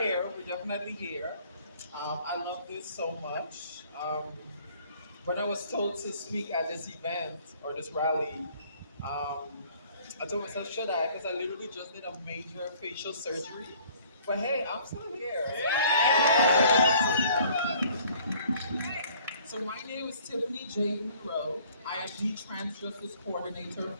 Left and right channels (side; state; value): both; inverted; correlation -0.56